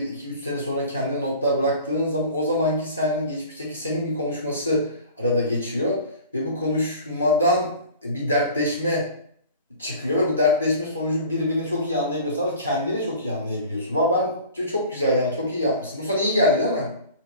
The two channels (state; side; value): inverted; both; correlation -0.43